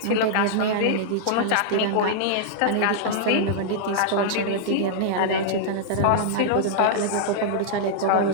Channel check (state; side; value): different; both; correlation -0.02